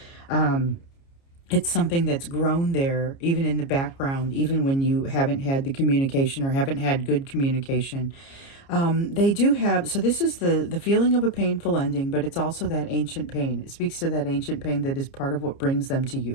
It's something that's grown there, even in the background, even when you haven't had the communication or haven't had good communication. They do have, so this is the feeling of a painful ending, but it's also that ancient pain. It speaks to that ancient pain that is part of what brings them to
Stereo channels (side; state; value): right; late; 29 ms